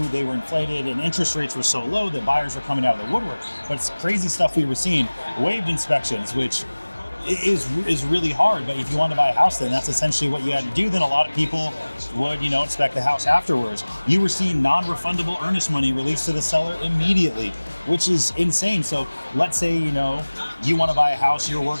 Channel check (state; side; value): inverted; both; correlation -1.00